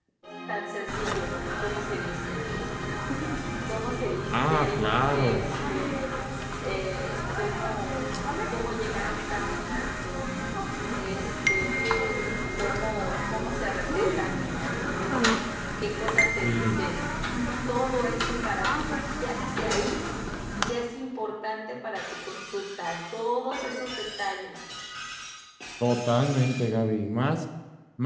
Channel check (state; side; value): identical; both; correlation 1.00